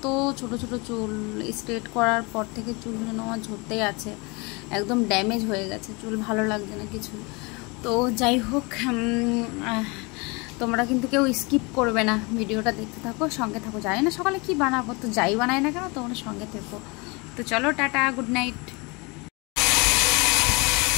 ছোট ছোট চুল। স্ট্রেট করার পর থেকে চুলগুলো আমার ঝরতেই আছে, একদম ড্যামেজ হয়ে গেছে চুল, ভালো লাগছে না কিছু। তো যাই হোক, তোমরা কিন্তু কেউ স্কিপ করবে না, ভিডিওটা দেখতে থাকো, সঙ্গে থাকো। জানি না সকালে কি বানাবো, তো যাই বানাই না কেন তোমরা সঙ্গে থেকো। তো চলো, টাটা, গুড নাইট।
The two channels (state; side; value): quieter; right; 27.9 dB